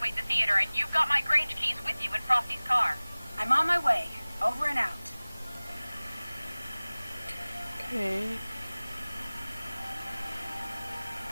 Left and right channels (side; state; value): both; inverted; correlation -1.00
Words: the theater, and you've got my Grange keys with you in Frosty's car. I'm on my way. Over and out. okay.